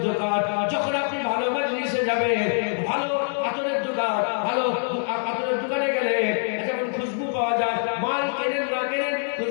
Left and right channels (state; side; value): silent; right; digital silence